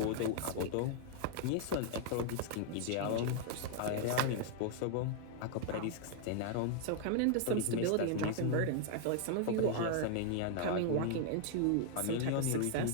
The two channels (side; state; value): both; different; correlation 0.00